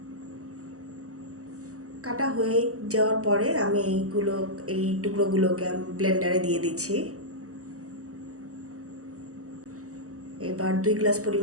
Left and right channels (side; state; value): left; late; 0.65 ms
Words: কাটা হয়ে যাওয়ার পরে আমি এই টুকরোগুলোকে ব্লেন্ডারে দিয়ে দিচ্ছি। এবার 2 গ্লাস